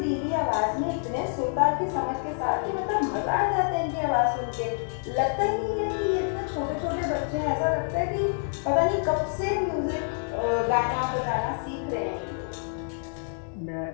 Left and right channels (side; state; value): right; silent; digital silence